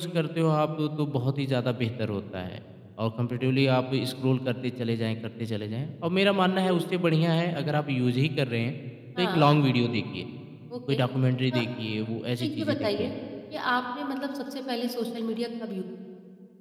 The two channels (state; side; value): identical; both; correlation 1.00